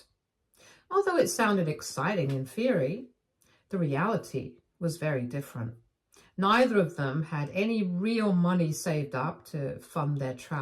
Although it sounded exciting in theory, the reality was very different. Neither of them had any real money saved up to fund their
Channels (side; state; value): both; identical; correlation 1.00